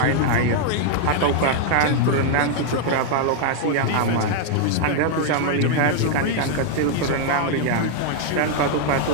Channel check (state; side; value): different; both; correlation 0.00